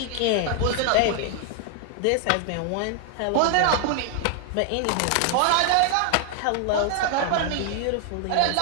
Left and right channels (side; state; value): both; different; correlation 0.00